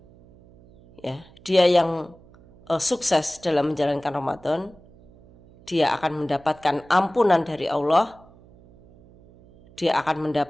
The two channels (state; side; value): noise; right; hum, 25 dB below the sound